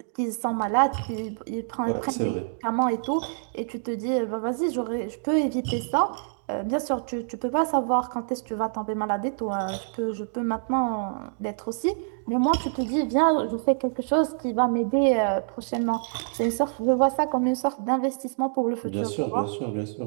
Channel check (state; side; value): silent; left; digital silence